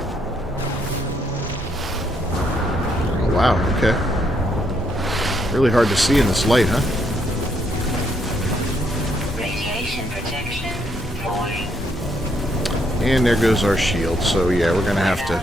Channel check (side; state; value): both; normal; correlation 0.73